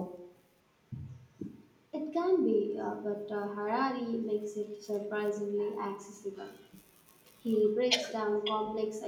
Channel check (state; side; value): identical; both; correlation 1.00